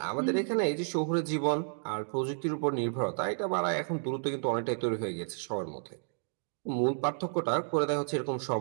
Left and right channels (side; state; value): left; silent; digital silence